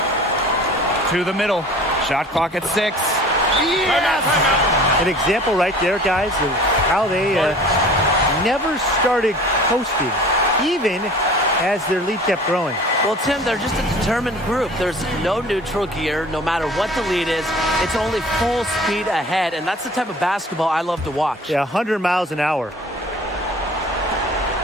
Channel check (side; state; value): both; normal; correlation 0.45